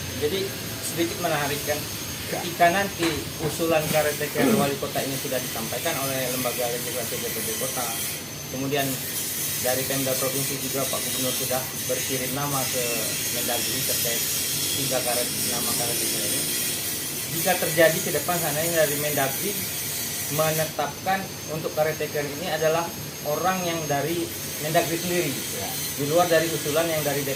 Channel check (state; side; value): identical; both; correlation 1.00